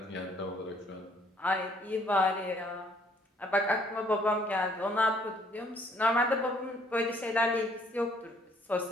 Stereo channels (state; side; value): normal; both; correlation 0.63